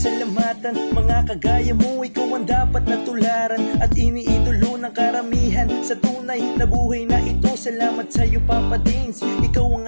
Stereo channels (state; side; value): inverted; both; correlation -1.00